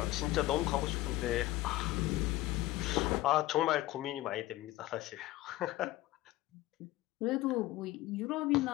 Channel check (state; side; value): quieter; right; 16.9 dB